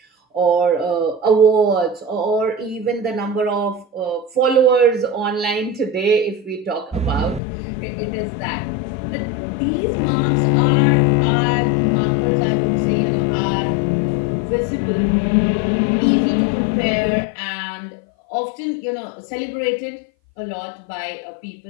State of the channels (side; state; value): right; drops out; at 7.4 s